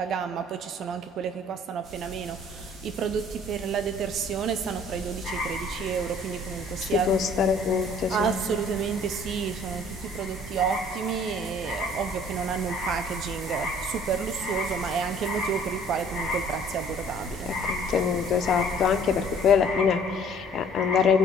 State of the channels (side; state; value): both; normal; correlation 0.54